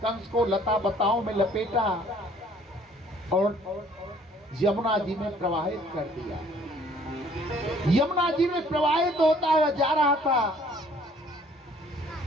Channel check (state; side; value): normal; both; correlation 0.58